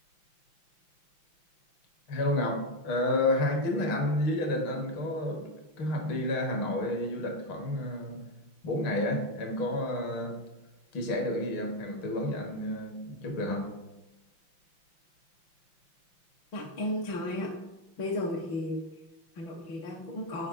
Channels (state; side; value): late; right; 5.8 ms